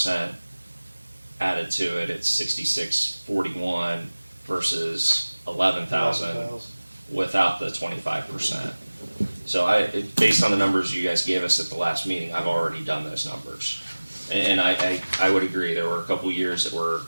added to it. It's 6641 versus 11,000 without the 25%. So based on the numbers you guys gave us at the last meeting, I've already done those numbers. And I would agree, there were a couple years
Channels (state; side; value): inverted; both; correlation -1.00